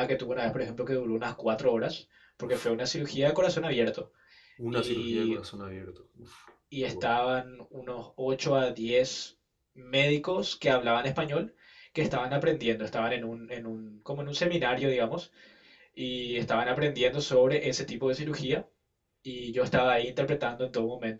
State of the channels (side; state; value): both; identical; correlation 1.00